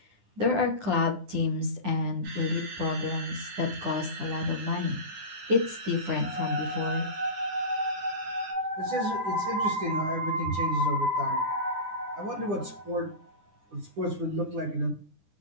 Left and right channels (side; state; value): left; late; 9.9 ms